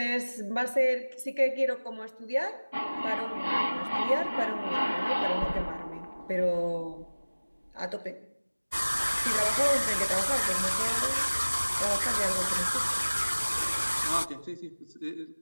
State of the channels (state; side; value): inverted; both; correlation -1.00